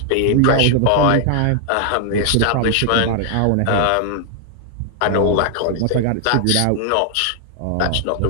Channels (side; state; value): both; different; correlation 0.00